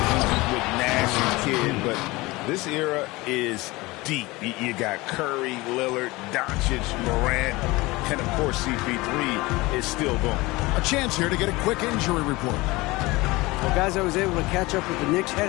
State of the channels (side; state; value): right; quieter; 21.7 dB